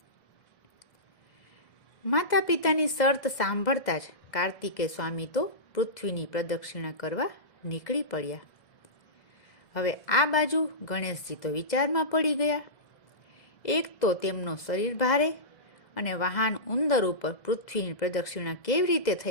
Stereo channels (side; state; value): right; late; 2.0 ms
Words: માતા પિતાની શરત સાંભળતા જ કાર્તિકેય સ્વામી તો પૃથ્વીની પ્રદક્ષિણા કરવા નીકળી પડ્યા. હવે આ બાજુ ગણેશજી તો વિચારમાં પડી ગયા. એક તો તેમનો શરીર ભારે અને વાહન ઉંદર ઉપર પૃથ્વીની પ્રદક્ષિણા કેવી રીતે